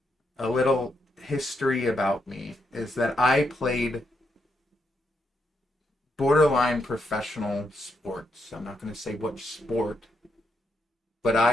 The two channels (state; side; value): normal; both; correlation 0.80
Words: A little history about me is that I played borderline professional sports. I'm not going to say which sport, but